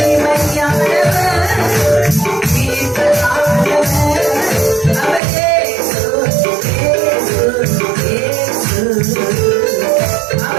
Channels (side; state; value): left; drops out; at 5.2 s